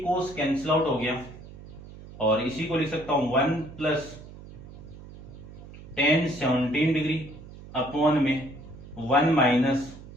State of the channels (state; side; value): noise; right; hum, 16 dB below the sound